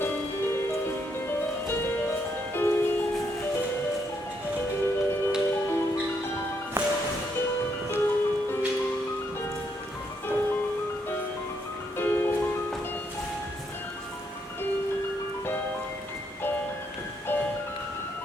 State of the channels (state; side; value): normal; both; correlation 0.75